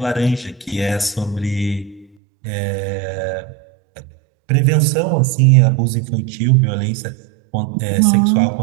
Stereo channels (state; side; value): drops out; left; at 2.1 s